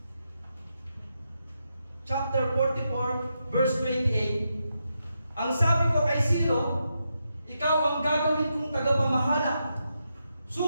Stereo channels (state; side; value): inverted; both; correlation -0.84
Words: chapter 44, verse 28, ang sabi ko kay Ciro, ikaw ang gagawin kong tagapamahala.